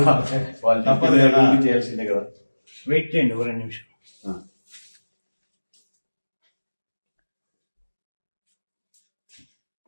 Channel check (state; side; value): inverted; both; correlation -1.00